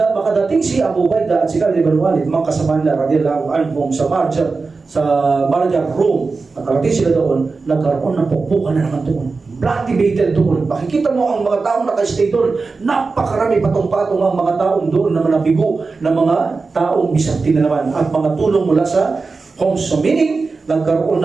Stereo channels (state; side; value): quieter; left; 4.2 dB